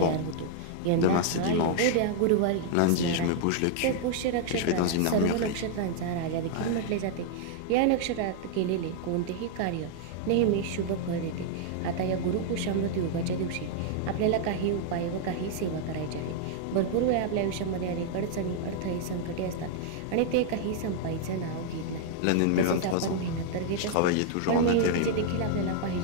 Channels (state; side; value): different; both; correlation 0.00